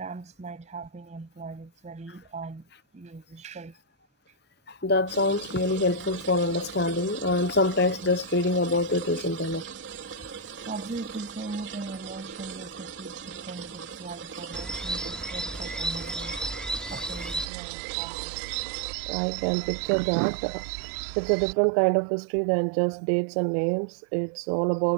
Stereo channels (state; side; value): drops out; left; at 17.4 s